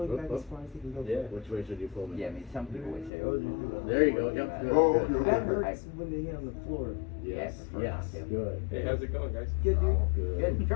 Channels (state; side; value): drops out; right; at 3.1 s